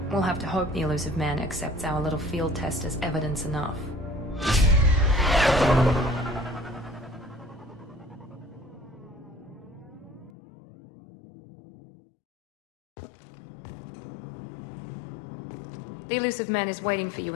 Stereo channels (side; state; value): right; drops out; at 10.3 s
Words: We'll have to hope the elusive man accepts our little field test as evidence enough. The elusive man is waiting for you